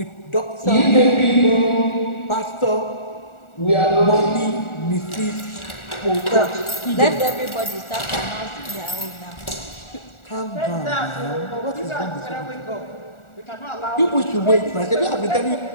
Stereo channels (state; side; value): late; right; 1.4 ms